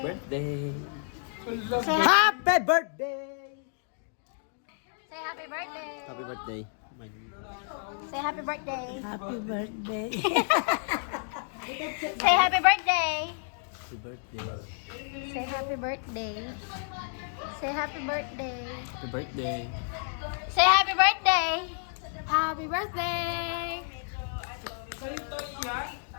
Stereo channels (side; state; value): right; silent; digital silence